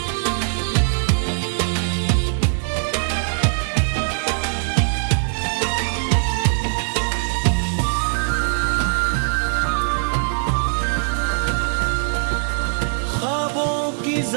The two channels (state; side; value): silent; left; digital silence